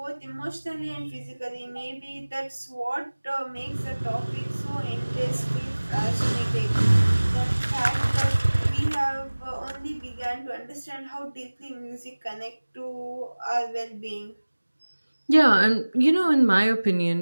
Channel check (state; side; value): inverted; both; correlation -1.00